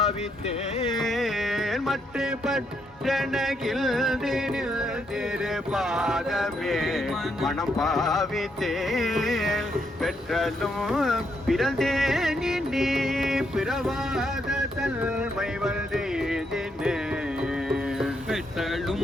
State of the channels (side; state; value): both; normal; correlation 0.77